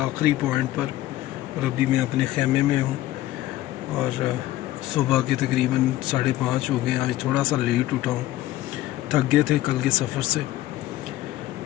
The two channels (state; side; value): quieter; right; 15.4 dB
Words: पॉइंट पर, और अभी मैं अपने खेमे में हूँ। और सुबह के तकरीबन 5:30 हो गए। आज थोड़ा सा लेट उठा हूँ, थक गए थे कल के सफ़र से।